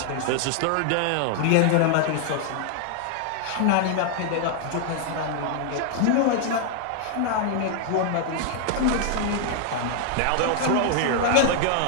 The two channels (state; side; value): different; both; correlation 0.00